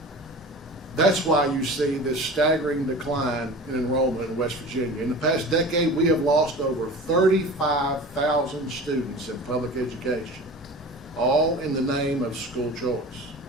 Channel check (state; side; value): normal; both; correlation 0.36